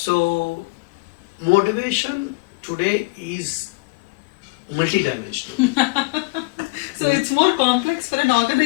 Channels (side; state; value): right; quieter; 27.9 dB